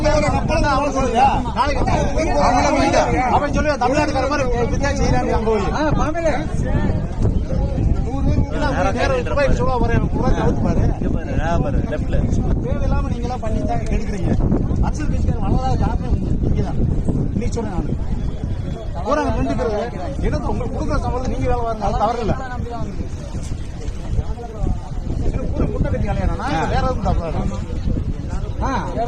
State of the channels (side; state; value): both; identical; correlation 1.00